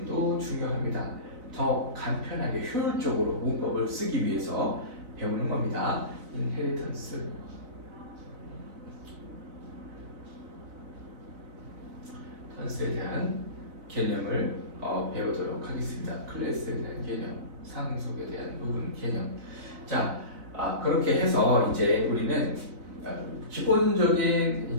중요합니다. 더 간편하게 효율적으로 문법을 쓰기 위해서 배우는 겁니다. 인헤리턴스에 대한 개념을 배우도록 하겠습니다. 클래스에 대한 개념, 상속에 대한 부분 개념. 자, 그렇게 해서 이제 우리는 기본적인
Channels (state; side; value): late; left; 4.0 ms